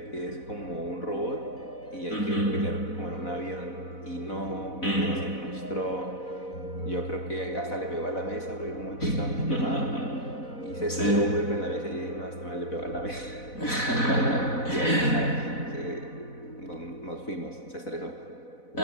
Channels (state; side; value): late; right; 4.0 ms